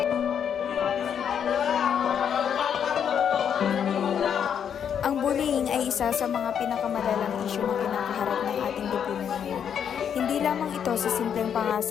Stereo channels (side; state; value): right; quieter; 8.2 dB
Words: Ang bullying ay isa sa mga pinakamalalang isyu na kinakaharap ng ating lipunan ngayon. Hindi lamang ito sa simpleng